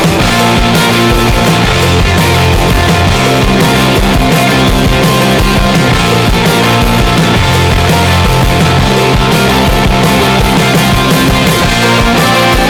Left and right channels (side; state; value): both; identical; correlation 1.00